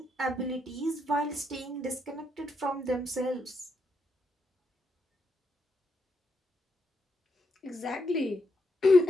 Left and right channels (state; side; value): normal; both; correlation 0.80